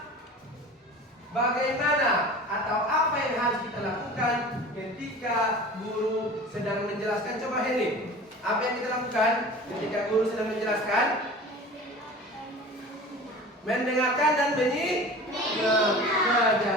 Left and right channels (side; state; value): both; normal; correlation 0.39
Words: bagaimana atau apa yang harus kita lakukan ketika guru sedang menjelaskan? Coba ini, apa yang kita lakukan ketika guru sedang menjelaskan? Mendengarkan dan Nah,